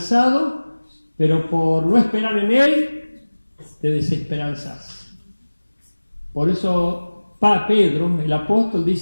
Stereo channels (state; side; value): inverted; both; correlation -1.00